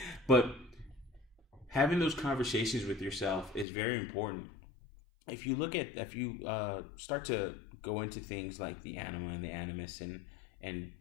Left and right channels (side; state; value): right; drops out; at 3.7 s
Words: But having those conversations with yourself is very important. If you start to go into things like the anima and the animus and